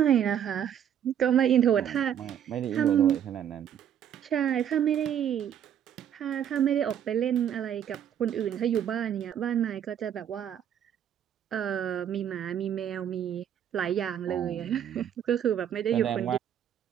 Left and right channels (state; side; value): quieter; left; 9.5 dB